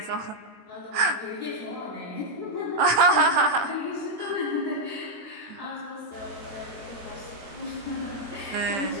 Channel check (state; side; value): late; left; 20 ms